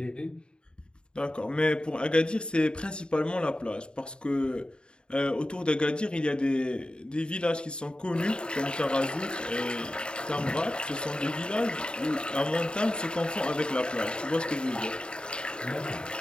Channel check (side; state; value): right; late; 0.051 ms